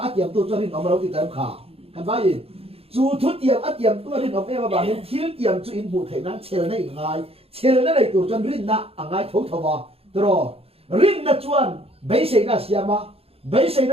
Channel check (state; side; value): late; left; 0.28 ms